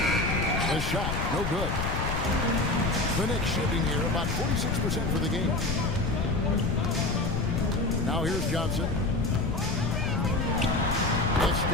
shot, no good. The Knicks shooting here about 46% for the game. Now here's Johnson. The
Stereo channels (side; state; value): left; noise; rumble, 2 dB below the sound